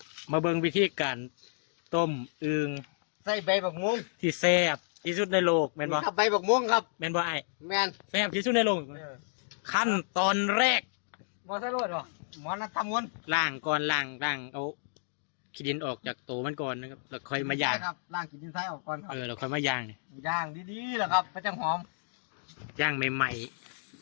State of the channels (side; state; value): right; silent; digital silence